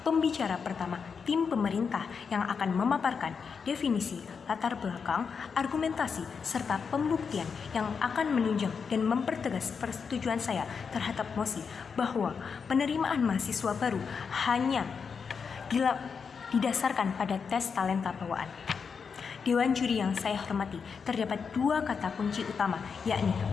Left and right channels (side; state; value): right; quieter; 5.9 dB